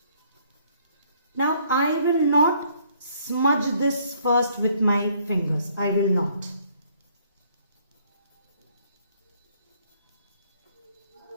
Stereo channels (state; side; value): inverted; both; correlation -0.64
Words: Now I will not smudge this first with my fingers. I will not.